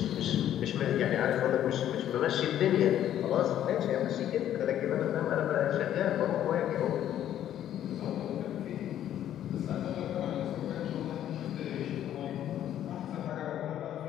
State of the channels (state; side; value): quieter; right; 11.2 dB